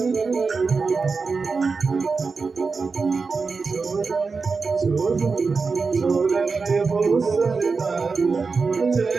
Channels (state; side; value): quieter; left; 4.6 dB